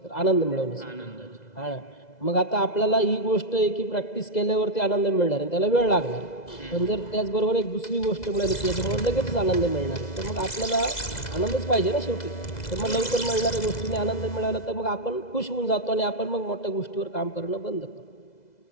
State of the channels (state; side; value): late; right; 2.0 ms